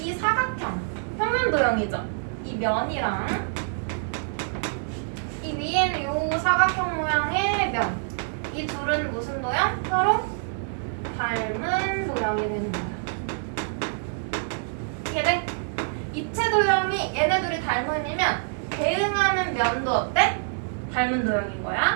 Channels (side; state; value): left; silent; digital silence